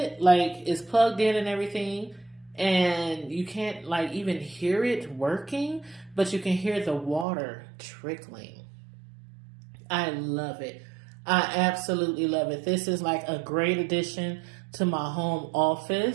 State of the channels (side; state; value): left; drops out; at 7.2 s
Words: like it's plugged in and everything. And you can't like even hear it working, but you can hear the water trickling. I love it. I absolutely love it. This is like a great addition to my home